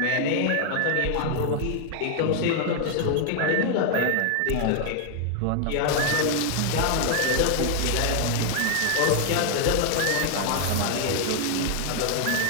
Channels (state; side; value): different; both; correlation 0.00